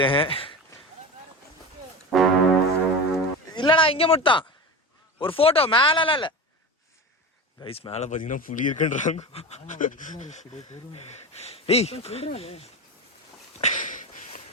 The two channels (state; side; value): normal; both; correlation 0.27